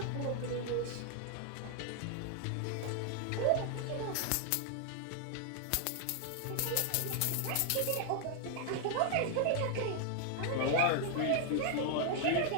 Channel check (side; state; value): both; different; correlation 0.00